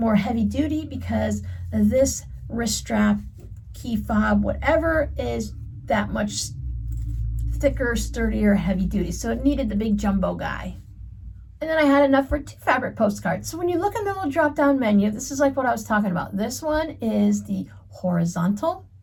heavy duty because this wrist strap, key fob, whatever, is that much thicker, sturdier, heavy duty. So it needed the big jumbo guy. And then I had enough for 2 fabric postcards. So when you look in the little drop-down menu, this is like what I was talking about. This one is the horizontal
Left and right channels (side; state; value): both; identical; correlation 1.00